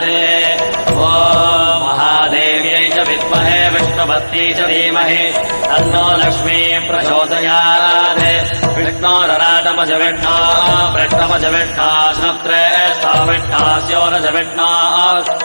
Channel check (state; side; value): inverted; both; correlation -1.00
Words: ॐ महादेव्यै च विद्महे विष्णुपत्न्यै च धीमहि तन्नो लक्ष्मी प्रचोदयात् विष्णोरराजमज विष्णा वृष्णमज विष्णा श्रेष्ठा विष्णास्योरज विष्णा